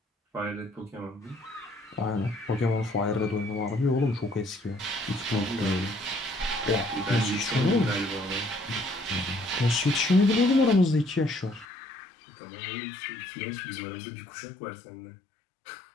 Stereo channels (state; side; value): drops out; right; at 11.7 s